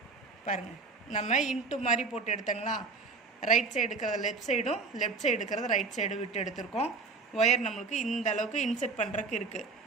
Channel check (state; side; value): quieter; left; 4.2 dB